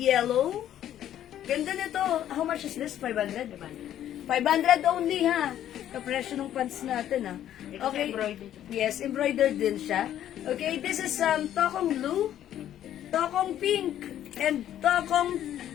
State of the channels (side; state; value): right; quieter; 11.3 dB